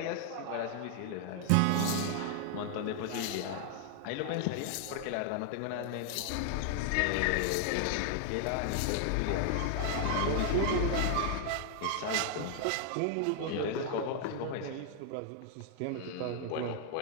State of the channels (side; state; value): both; different; correlation 0.00